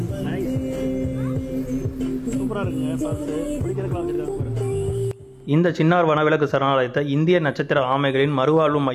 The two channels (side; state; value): both; identical; correlation 1.00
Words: இந்த சின்னார் வனவிலங்கு சரணாலயத்தை இந்திய நட்சத்திர ஆமைகளின் மறுவாழ்வு